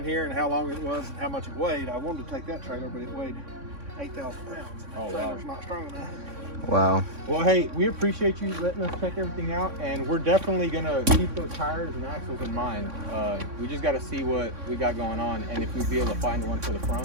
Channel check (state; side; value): late; left; 3.6 ms